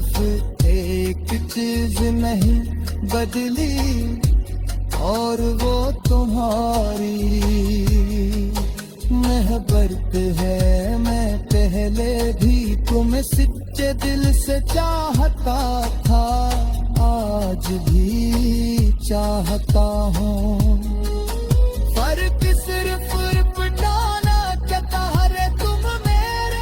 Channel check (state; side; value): identical; both; correlation 1.00